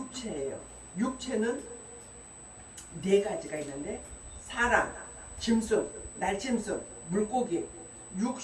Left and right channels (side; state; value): both; identical; correlation 1.00